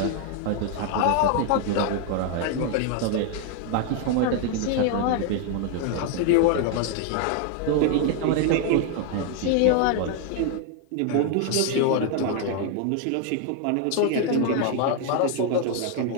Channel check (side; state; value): both; different; correlation 0.00